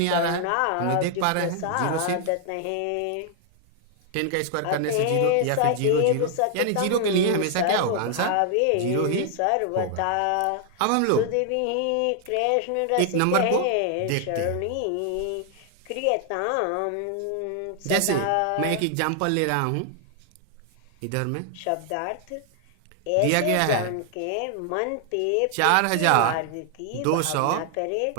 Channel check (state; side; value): different; both; correlation 0.00